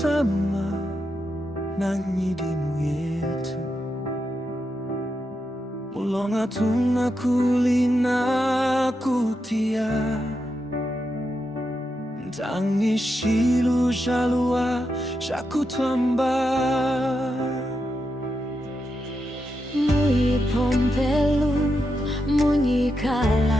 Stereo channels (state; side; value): normal; both; correlation 0.85